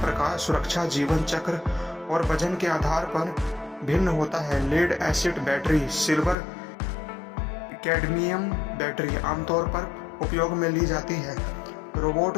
सुरक्षा, जीवन चक्र और वजन के आधार पर भिन्न होता है। Lead acid battery, silver cadmium battery आमतौर पर उपयोग में ली जाती है। रोबोट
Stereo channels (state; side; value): drops out; right; at 6.4 s